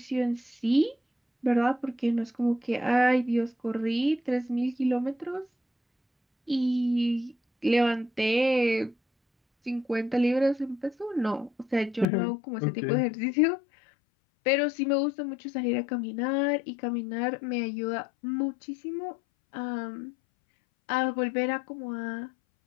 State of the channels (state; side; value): drops out; right; at 12.1 s